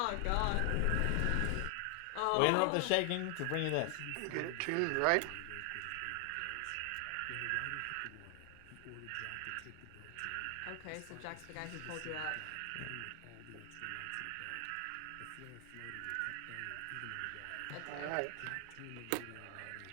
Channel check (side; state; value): both; different; correlation 0.00